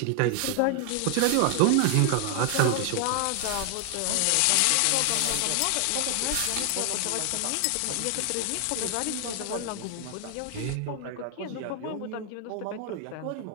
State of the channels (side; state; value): both; different; correlation 0.00